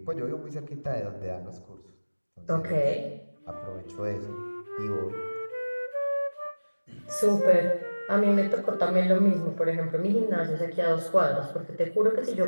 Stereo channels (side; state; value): both; inverted; correlation -1.00